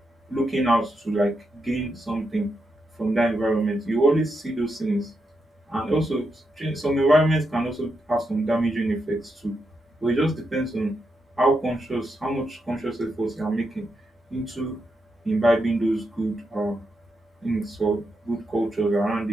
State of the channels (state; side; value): normal; both; correlation 0.84